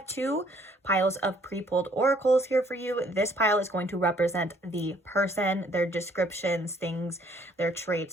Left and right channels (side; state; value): both; normal; correlation 0.63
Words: 2 piles of pre-pulled oracles here for you. This pile is going to represent the person, their descriptions, things, their